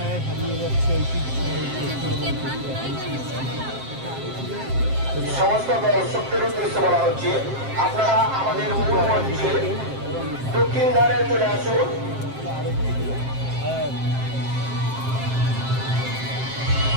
হারিয়ে যাচ্ছে সমস্ত দর্শকদের উদ্দেশ্যে বলা হচ্ছে, আপনারা আমাদের মূল মঞ্চে দক্ষিণ ধারে চলে আসুন।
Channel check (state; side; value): late; left; 7.6 ms